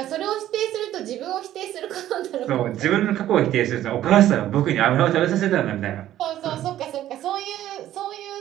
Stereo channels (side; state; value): left; quieter; 12.8 dB